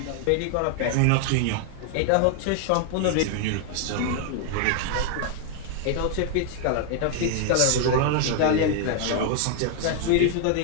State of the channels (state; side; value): different; both; correlation 0.00